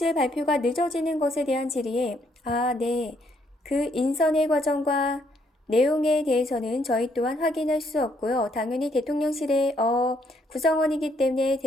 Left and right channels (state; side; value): normal; both; correlation 0.71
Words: 발표가 늦어지는 것에 대한 질의에 네. 그 인선의 과정과 내용에 대해서는 저희 또한 확인할 수 없고요. 당연히 대통령실의 구성원이기 때문에